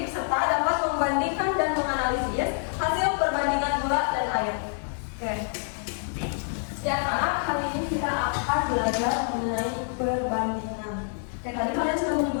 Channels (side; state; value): right; silent; digital silence